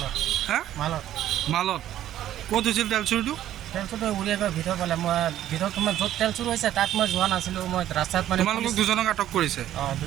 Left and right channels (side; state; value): left; quieter; 12.3 dB